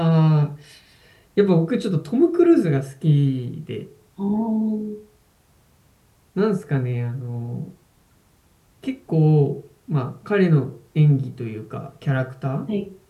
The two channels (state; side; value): identical; both; correlation 1.00